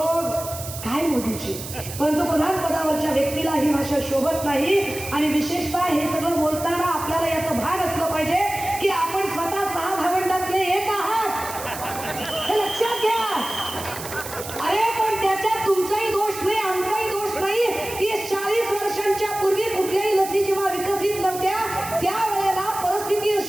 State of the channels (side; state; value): right; noise; hiss, 10 dB below the sound